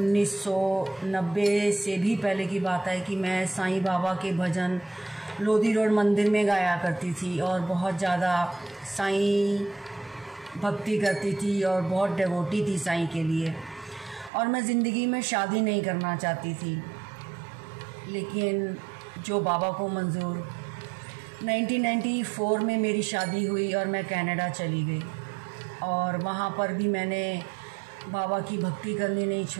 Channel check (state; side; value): drops out; left; at 14.3 s